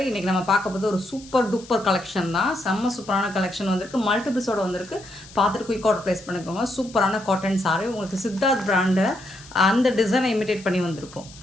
இன்றைக்கி நம்ம பார்க்க போது ஒரு சூப்பர் டூப்பர் கலெக்ஷன் தான். செம்ம சூப்பரான கலெக்ஷன் வந்திருக்கு, மல்டிபிள்ஸோடு வந்திருக்கு. பார்த்துட்டு குயிக் ஆர்டர் ப்ளேஸ் பண்ணிக்கோங்க. சூப்பரான காட்டன் சாரி, உங்களுக்கு சித்தார்த் பிராண்டு அந்த டிசைனை இமிட்டேட் பண்ணி வந்திருக்கும்.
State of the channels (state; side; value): noise; left; hiss, 20 dB below the sound